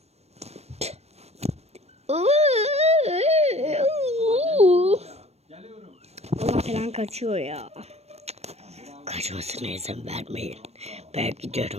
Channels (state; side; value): late; left; 0.31 ms